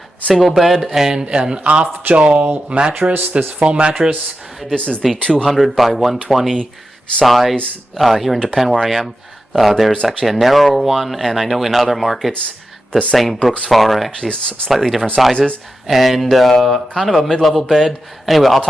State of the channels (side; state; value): both; normal; correlation 0.90